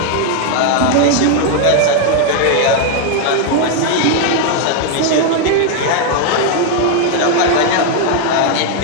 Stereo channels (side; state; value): both; different; correlation 0.00